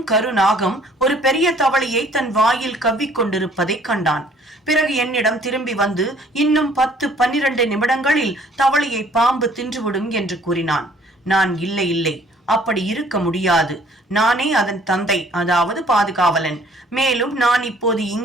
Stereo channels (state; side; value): normal; both; correlation 0.57